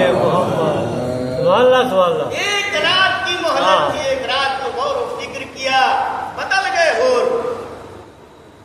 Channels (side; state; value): both; identical; correlation 1.00